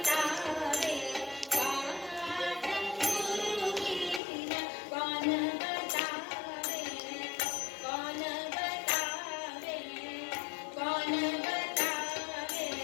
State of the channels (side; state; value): right; drops out; at 4.2 s